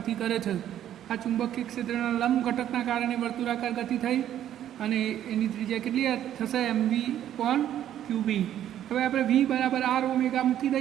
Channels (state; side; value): quieter; left; 11.2 dB